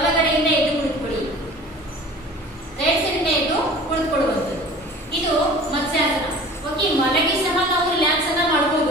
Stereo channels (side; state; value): both; normal; correlation 0.43